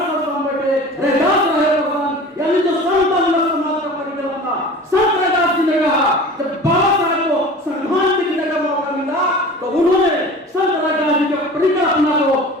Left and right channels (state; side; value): normal; both; correlation 0.39